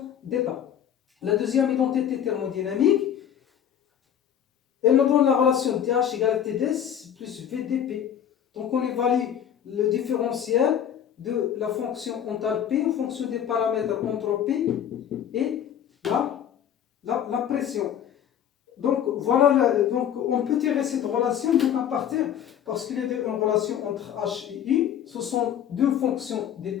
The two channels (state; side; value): quieter; right; 9.4 dB